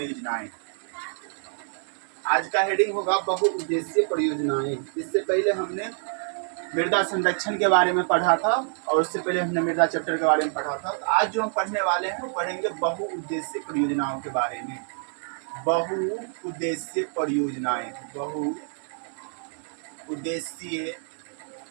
आज का हेडिंग होगा बहुउद्देशीय परियोजनाएं। इससे पहले हमने मृदा संरक्षण के बारे में पढ़ा था और उससे पहले हमने मृदा चैप्टर के बारे में पढ़ा था। तो आज जो हम पढ़ने वाले हैं वो पढ़ेंगे बहुउद्देशीय परियोजनाओं के बारे में। बहुउद्देशीय परियोजनाएं, बहुउद्देशीय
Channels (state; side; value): silent; left; 59 dB below the other